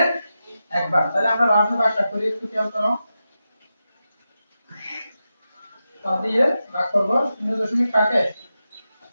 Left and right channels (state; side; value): inverted; both; correlation -0.90